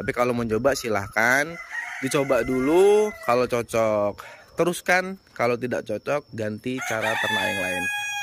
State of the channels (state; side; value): identical; both; correlation 1.00